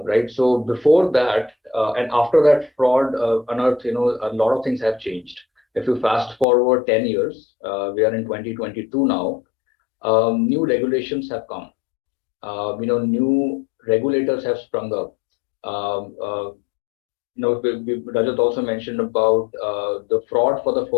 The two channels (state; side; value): drops out; right; at 6.5 s